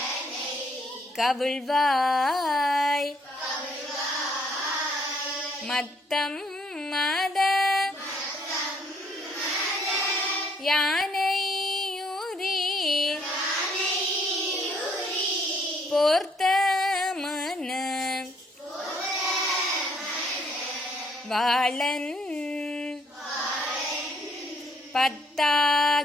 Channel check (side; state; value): both; normal; correlation 0.66